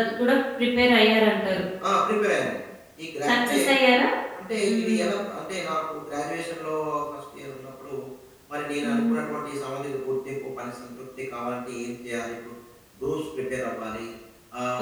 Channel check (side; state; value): both; identical; correlation 1.00